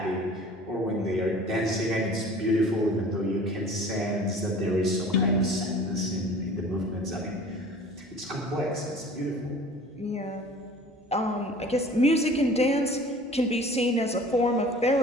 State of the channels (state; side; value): normal; both; correlation 0.45